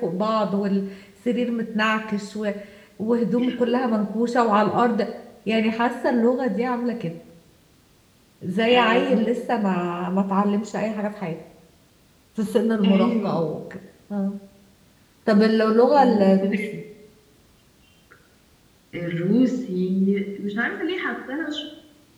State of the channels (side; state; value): both; identical; correlation 1.00